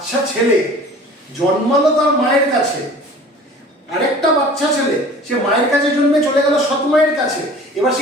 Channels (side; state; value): both; normal; correlation 0.45